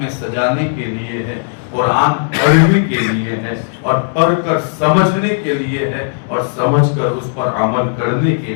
سجانے کے لیے ہے۔ قرآن پڑھنے کے لیے ہے اور پڑھ کر سمجھنے کے لیے ہے اور سمجھ کر اس پر عمل کرنے کے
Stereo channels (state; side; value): silent; right; 70 dB below the other